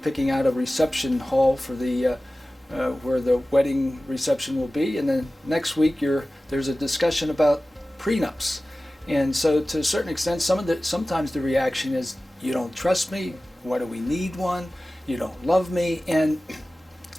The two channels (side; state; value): both; normal; correlation 0.96